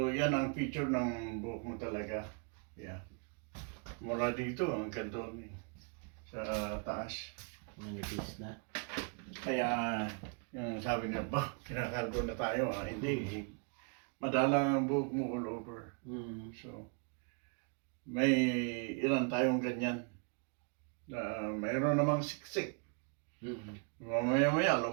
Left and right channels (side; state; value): left; quieter; 38.5 dB